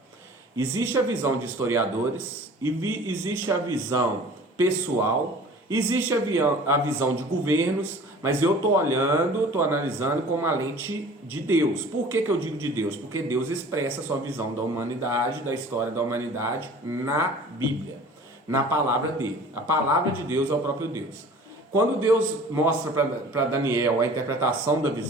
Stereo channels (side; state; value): both; normal; correlation 0.45